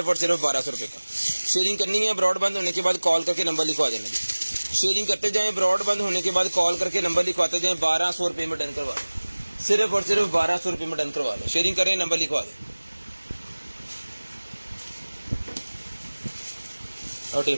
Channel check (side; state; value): both; inverted; correlation -1.00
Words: और सिर्फ 1200 रुपये का। शेयरिंग करनी है, ब्रॉड बंद होने के बाद कॉल करके नंबर लिखवा देना जी। शेयरिंग करते जाएं, ब्रॉड बंद होने के बाद कॉल करके नंबर लिखवाते जाएं, 1200 रुपये में डन करवा लें, सिर्फ और सिर्फ 1200 रुपये में डन करवा लें। शेयरिंग करें, नंबर लिखवा दें। और